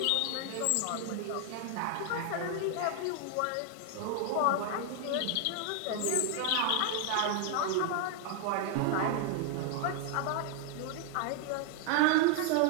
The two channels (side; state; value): both; different; correlation 0.00